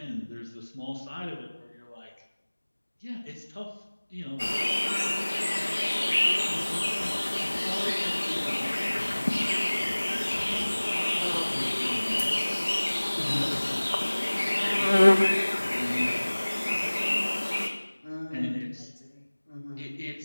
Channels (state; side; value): inverted; both; correlation -1.00